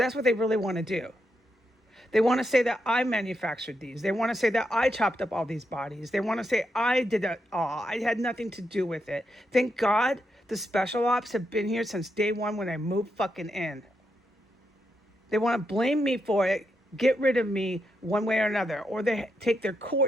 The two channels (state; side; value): normal; both; correlation 0.83